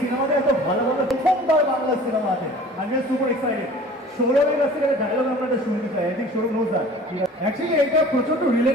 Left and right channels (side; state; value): both; normal; correlation 0.45